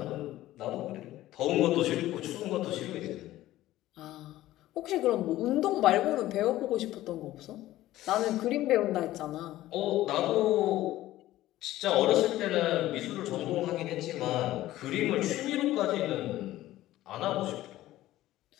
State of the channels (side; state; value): right; quieter; 15.2 dB